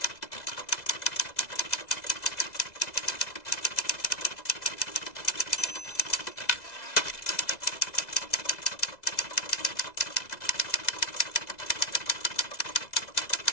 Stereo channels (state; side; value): late; right; 2.0 ms